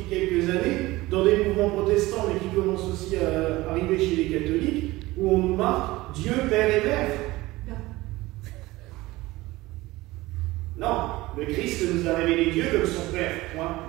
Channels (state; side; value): quieter; left; 19.3 dB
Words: quelques années, dans des mouvements protestants, mais qui commencent aussi à arriver chez les catholiques, où on nous marque Dieu, Père et Mère. Non, le Christ nous a révélé Dieu comme son Père, point